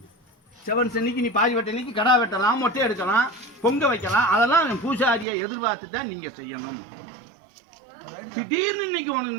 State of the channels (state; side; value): drops out; left; at 5.2 s